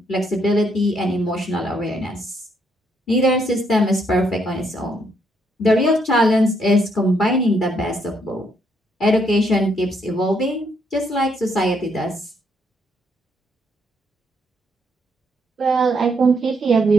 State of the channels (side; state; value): both; normal; correlation 0.73